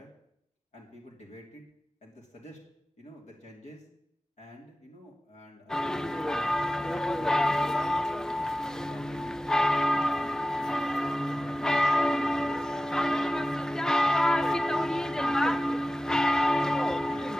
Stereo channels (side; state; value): both; normal; correlation 0.95